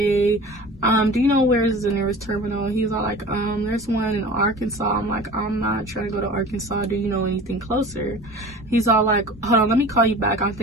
do you know where is the nearest terminal? He's all like, there's one in Arkansas. I'm like, I'm not trying to go to Arkansas. Do you know anything closer? He's all like, hold on, let me call you back. I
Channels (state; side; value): normal; both; correlation 0.39